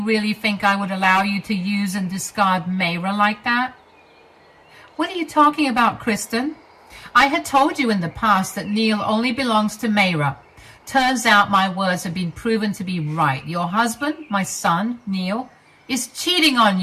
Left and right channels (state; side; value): identical; both; correlation 1.00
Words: really think I would allow you to use and discard Mayra like that?" "What are you talking about, Kristen? I had told you in the past that Neil only belongs to Mayra. Turns out my words have been proven to be right. Your husband, my son, Neil, is cheating on